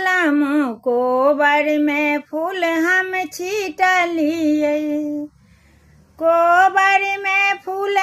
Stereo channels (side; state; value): both; identical; correlation 1.00